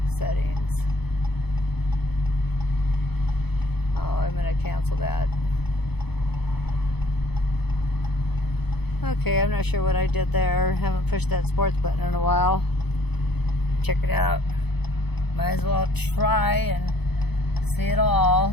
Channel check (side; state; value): right; late; 0.98 ms